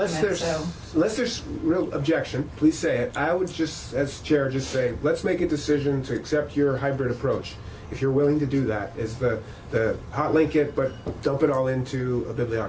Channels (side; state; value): both; identical; correlation 1.00